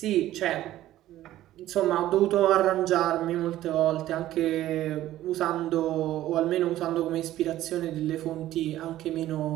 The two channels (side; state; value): left; quieter; 14.1 dB